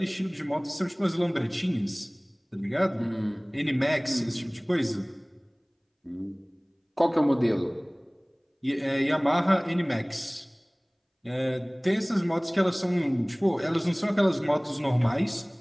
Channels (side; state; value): both; identical; correlation 1.00